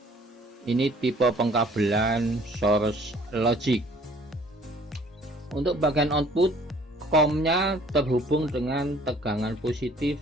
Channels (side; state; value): both; normal; correlation 0.55